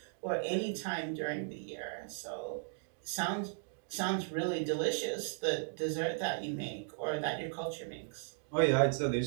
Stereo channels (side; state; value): left; silent; digital silence